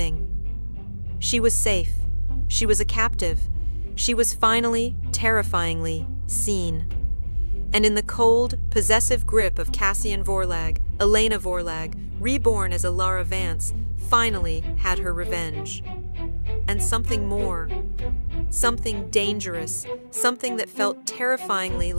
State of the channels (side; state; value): both; inverted; correlation -1.00